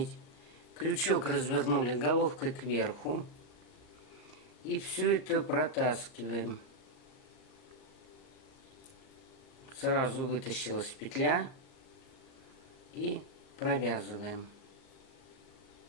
крючок развернули головкой кверху. И все это протаскиваем. Сразу вытащилась петля и провязываем.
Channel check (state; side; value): late; right; 38 ms